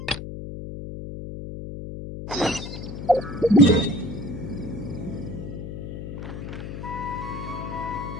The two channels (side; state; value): left; noise; hum, 8 dB below the sound